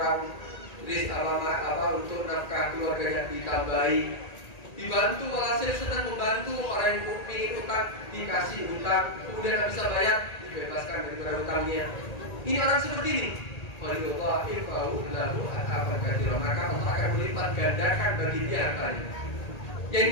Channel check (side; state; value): right; late; 1.8 ms